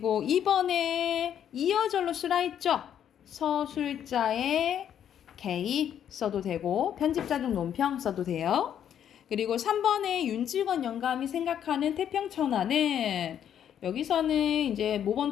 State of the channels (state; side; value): quieter; right; 9.5 dB